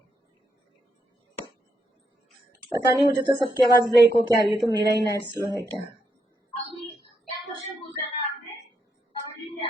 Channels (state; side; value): normal; both; correlation 0.80